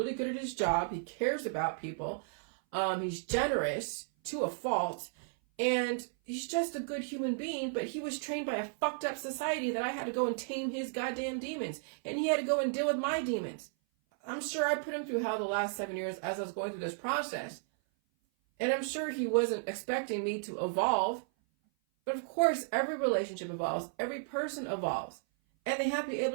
good at his job. He cares about people. He's generous to a fault. And he's just a good human being, but he was trained by a fucked up society that I had to go and tame his goddamn demons. And he had to go and deal with my demons. I'm sure I put him through hell the last 7 years as I was going through this process. And I'm sure he wasn't expecting me to evolve. But of course, every relationship evolves. Every person evolves. And they have to be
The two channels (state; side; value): silent; left; 55 dB below the other